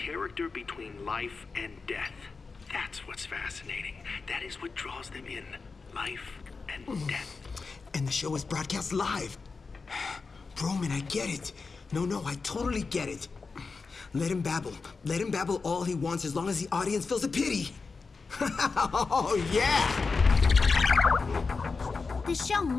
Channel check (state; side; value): quieter; right; 4.5 dB